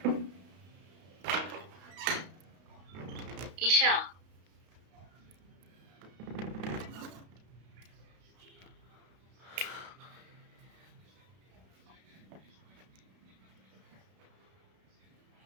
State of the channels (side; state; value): left; late; 32 ms